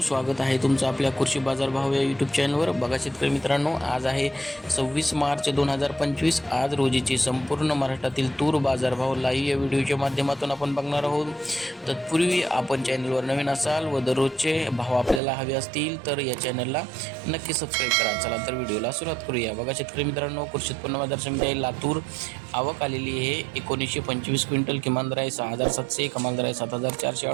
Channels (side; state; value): left; drops out; at 15.2 s